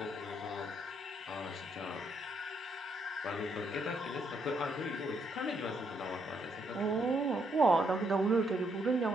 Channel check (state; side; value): normal; both; correlation 0.75